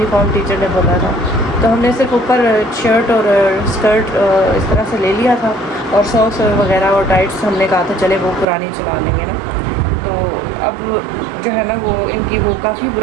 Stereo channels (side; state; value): left; drops out; at 8.5 s